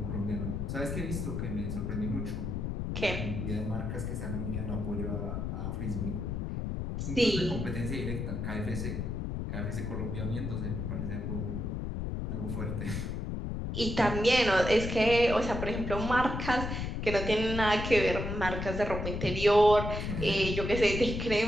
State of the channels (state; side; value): noise; left; rumble, 3 dB below the sound